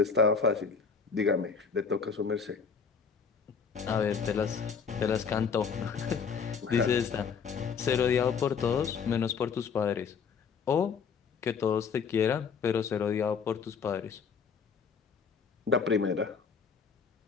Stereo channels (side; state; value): right; quieter; 6.0 dB